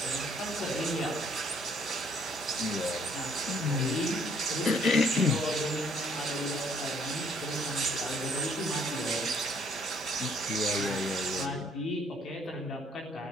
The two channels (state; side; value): normal; both; correlation 0.64